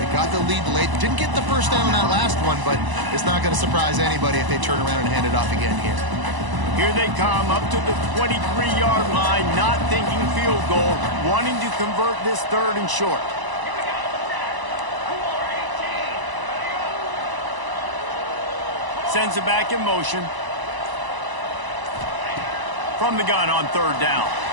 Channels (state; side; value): late; left; 1.0 ms